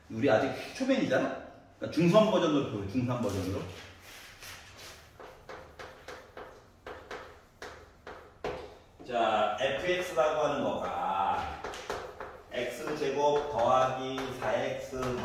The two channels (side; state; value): both; identical; correlation 1.00